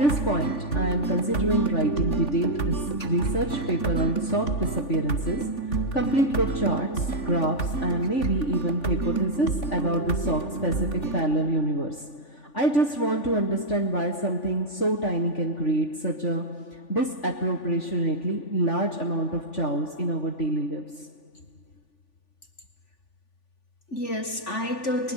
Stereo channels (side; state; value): right; late; 3.5 ms